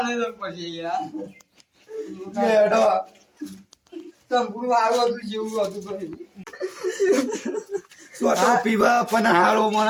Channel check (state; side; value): identical; both; correlation 1.00